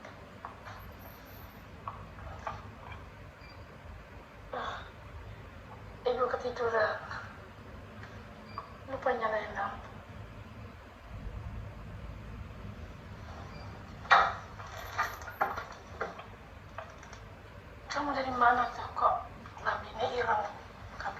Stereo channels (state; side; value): identical; both; correlation 1.00